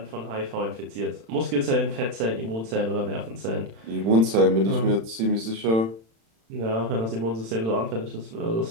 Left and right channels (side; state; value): left; late; 36 ms